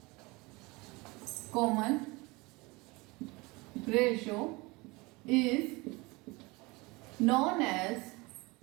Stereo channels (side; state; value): left; quieter; 24.4 dB